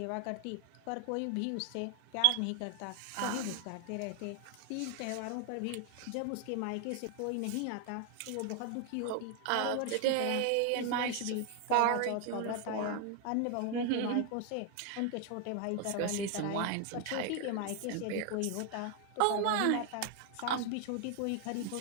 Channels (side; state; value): both; different; correlation 0.00